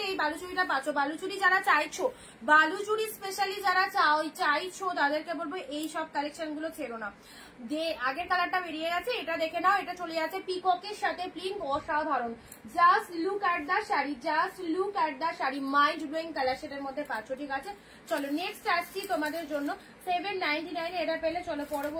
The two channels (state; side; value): identical; both; correlation 1.00